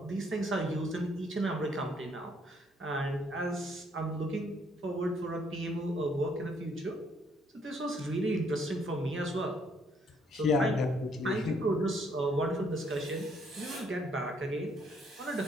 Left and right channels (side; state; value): both; normal; correlation 0.67